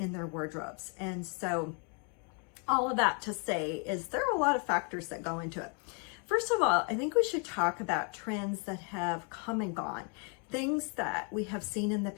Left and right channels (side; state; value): right; quieter; 37.6 dB